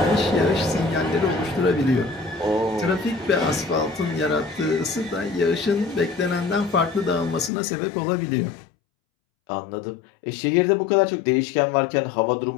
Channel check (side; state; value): right; drops out; at 7.5 s